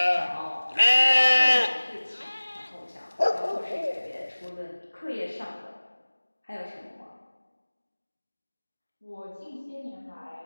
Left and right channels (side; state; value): both; inverted; correlation -1.00